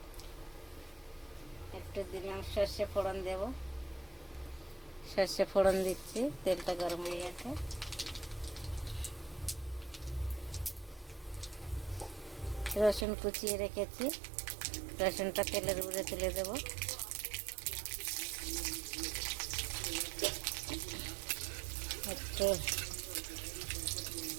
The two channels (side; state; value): left; drops out; at 13.1 s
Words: একটু দিলাম সর্ষে ফোড়ন দেব। সর্ষে ফোড়ন দিচ্ছি, তেলটা গরম হয়ে গেছে। রসুন কুচিয়ে রেখেছি, রসুনটা তেলের উপরে তুলে দেবো। একটু